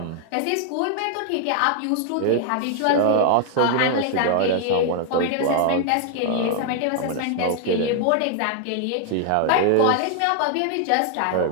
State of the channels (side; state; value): both; different; correlation 0.00